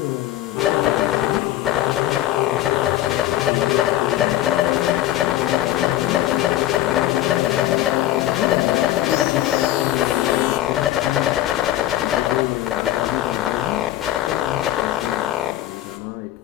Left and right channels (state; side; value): quieter; right; 13.8 dB